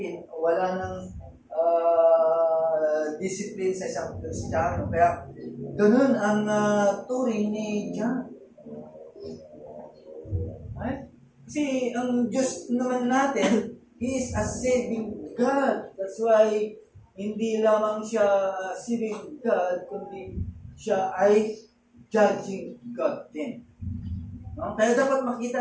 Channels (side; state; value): both; identical; correlation 1.00